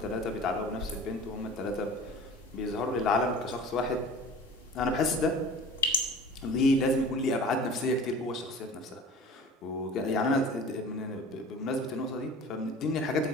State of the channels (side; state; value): both; normal; correlation 0.41